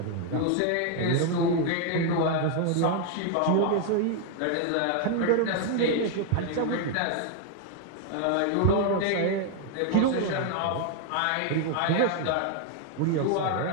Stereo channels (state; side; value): different; both; correlation 0.00